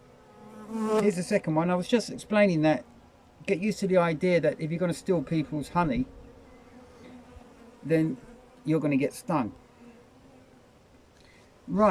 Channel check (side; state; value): both; identical; correlation 1.00